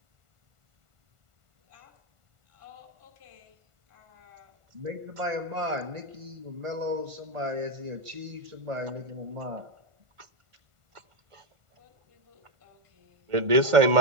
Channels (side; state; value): left; late; 1.5 ms